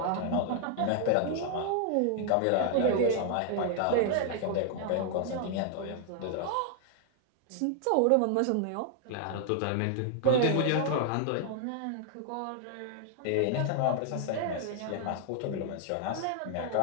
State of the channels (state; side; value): different; both; correlation 0.00